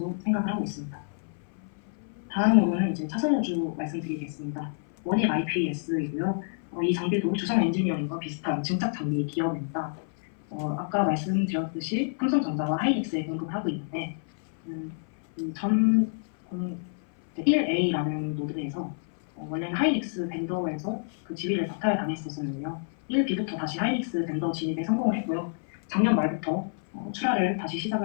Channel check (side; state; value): right; silent; 57 dB below the other